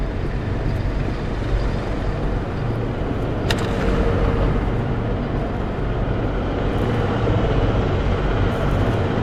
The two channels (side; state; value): both; identical; correlation 1.00